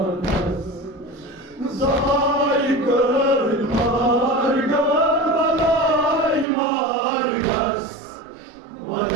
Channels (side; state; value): left; drops out; at 6.5 s